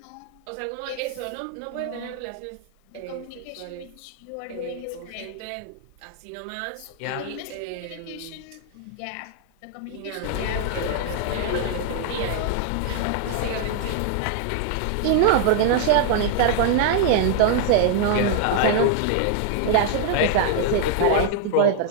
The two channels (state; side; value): different; both; correlation 0.00